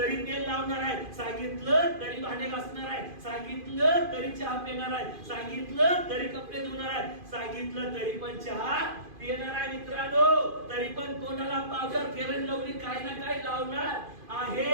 तेल लावणार आहे, सांगितलं तरी भांडे घासणार आहे, सांगितलं तरी चहा पिणार आहे, सांगितलं तरी कपडे धुणार आहे, सांगितलं तरी पण चहा पिणार आहे मित्रांनो. तरी पण तोंडाला पावडर, फेअर अँड लवली काही ना काही लावणार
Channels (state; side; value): late; left; 2.5 ms